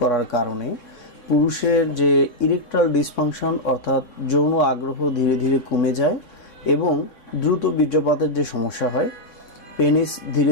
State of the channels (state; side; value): late; right; 3.6 ms